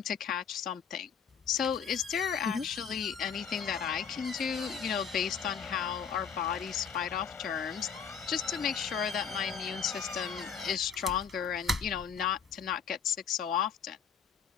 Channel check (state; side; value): quieter; right; 7.0 dB